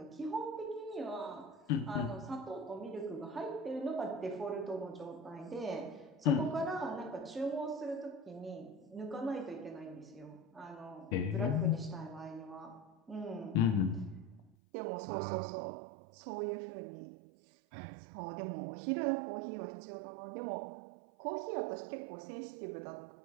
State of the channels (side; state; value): left; drops out; at 14.5 s